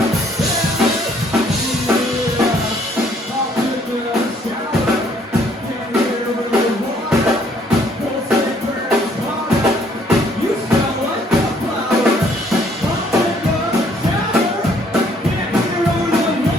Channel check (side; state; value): both; normal; correlation 0.64